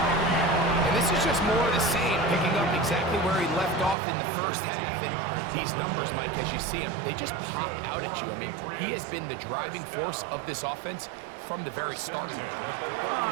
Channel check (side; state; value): left; drops out; at 4.0 s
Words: And this is just more of the same, picking up exactly where he left off in the first half. And these numbers, Mike, as you see them, they just pop out at you. I mean, he has been the driving force of this offense from the very start.